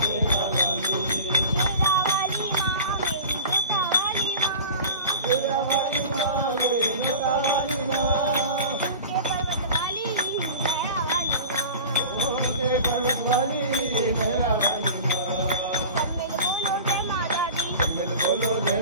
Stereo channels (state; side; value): inverted; both; correlation -0.37